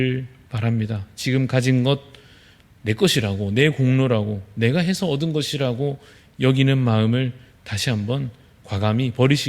바랍니다. 지금 가진 것 내 것이라고, 내 공로라고, 내가 해서 얻은 것이라고 여기는 마음을 다시 한번 과감히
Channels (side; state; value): both; identical; correlation 1.00